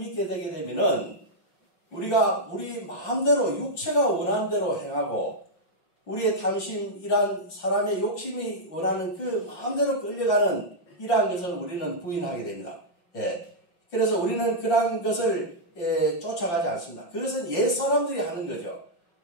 되게 되면은 우리가 우리 마음대로 육체가 원하는 대로 행하고 우리의 탐심, 이러한 사람의 욕심이 원하는 그 마음대로 끌려가는 이러한 것을 우리는 부인하게 됩니다. 그래서 우리는 그러한 것을 쫓아가지 않습니다. 그것은 옛 사람들이 하는 거죠.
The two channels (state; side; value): late; right; 5.7 ms